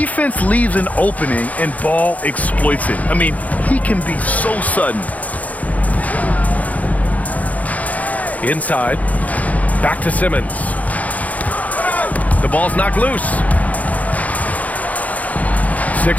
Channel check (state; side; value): late; right; 0.073 ms